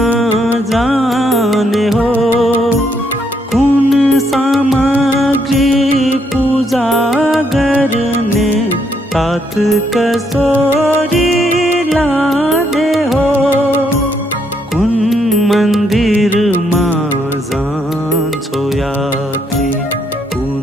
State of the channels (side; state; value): both; normal; correlation 0.74